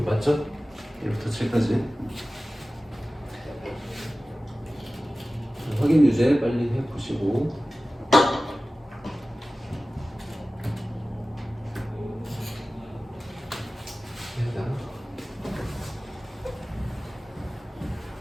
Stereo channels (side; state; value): both; normal; correlation 0.96